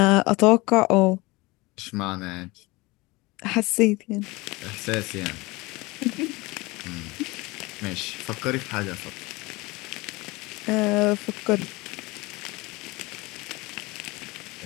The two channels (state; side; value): quieter; right; 23.2 dB